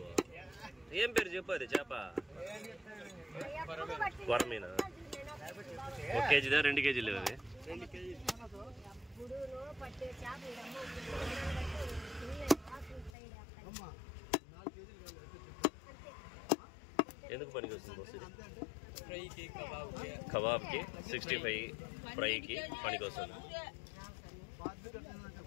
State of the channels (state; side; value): drops out; right; at 13.1 s